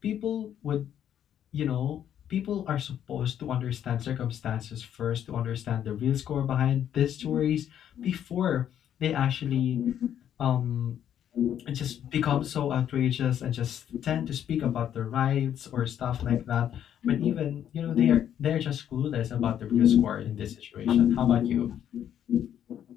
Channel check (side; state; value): right; quieter; 10.0 dB